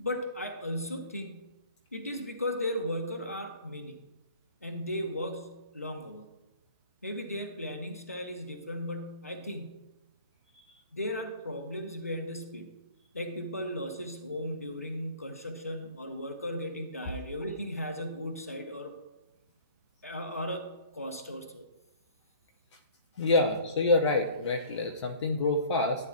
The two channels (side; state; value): both; inverted; correlation -0.49